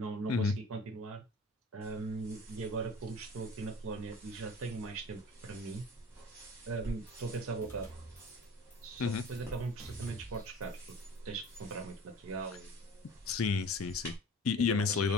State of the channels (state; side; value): normal; both; correlation 0.42